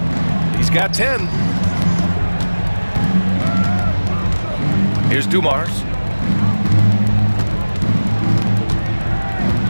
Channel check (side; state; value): both; inverted; correlation -1.00